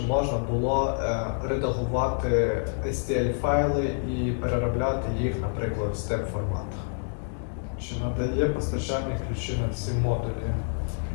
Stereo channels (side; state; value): right; silent; digital silence